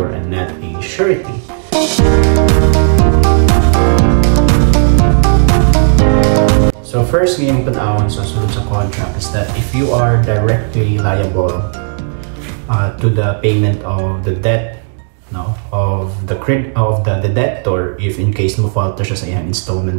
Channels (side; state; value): left; silent; digital silence